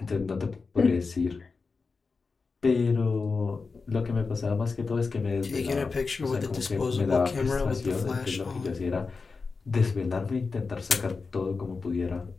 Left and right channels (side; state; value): right; quieter; 4.5 dB